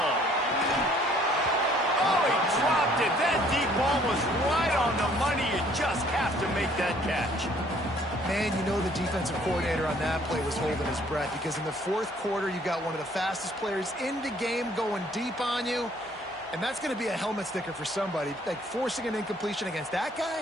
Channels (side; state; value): both; normal; correlation 0.60